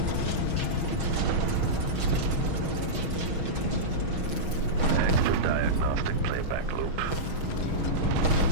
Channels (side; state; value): left; late; 6.3 ms